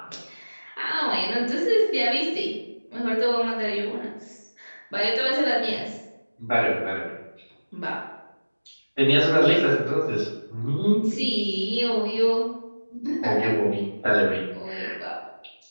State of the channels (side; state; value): both; inverted; correlation -1.00